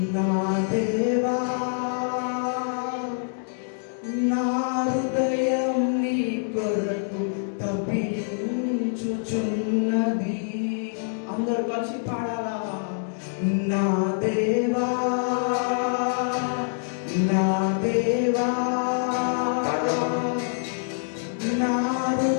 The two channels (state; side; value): silent; right; digital silence